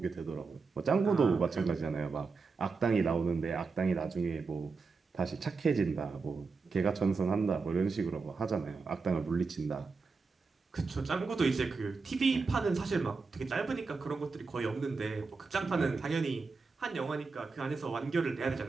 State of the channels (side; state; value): left; quieter; 4.5 dB